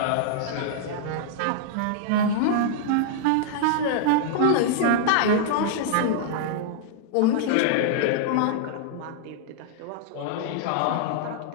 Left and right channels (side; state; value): both; different; correlation -0.01